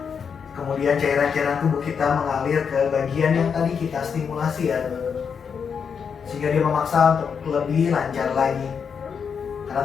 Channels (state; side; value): quieter; right; 6.6 dB